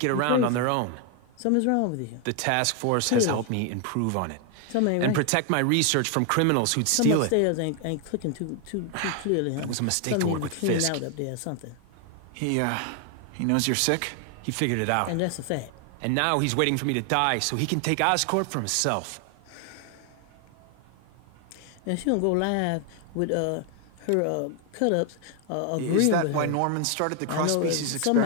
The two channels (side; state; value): both; different; correlation 0.01